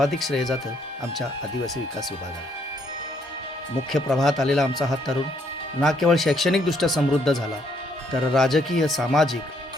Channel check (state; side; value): normal; both; correlation 0.70